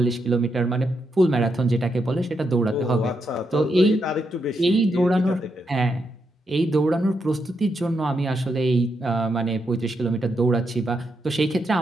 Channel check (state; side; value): normal; both; correlation 0.82